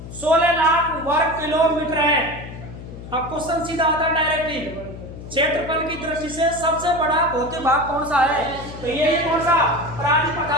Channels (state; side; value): noise; left; hum, 12 dB below the sound